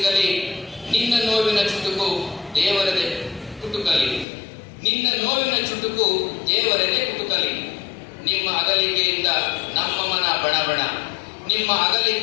ನಿನ್ನ ನೋವಿನ ಚುಟುಕು ದೇವರದೆ ಕುಟುಕಲಿ, ನಿನ್ನ ನೋವಿನ ಚುಟುಕು ದೇವರದೆ ಕುಟುಕಲಿ. ನಿಮ್ಮ ಅಗಲಿಕೆಯಿಂದ ನಮ್ಮ ಮನ ಬಣಬಣ, ನಿಮ್ಮ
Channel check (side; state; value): right; drops out; at 4.2 s